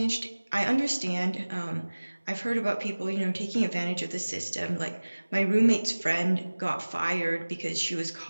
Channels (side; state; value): both; inverted; correlation -1.00